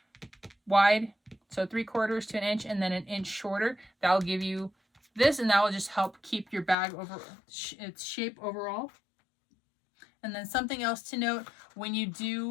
wide, so 3/4 to an inch and then an inch shorter, that'll give you this, and that will just help keep your bag over its shape overall. And then something else to note, when you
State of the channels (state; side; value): drops out; right; at 6.8 s